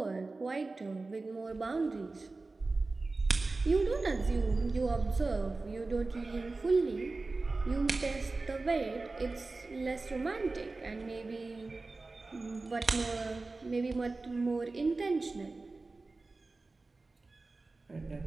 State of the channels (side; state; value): left; quieter; 3.5 dB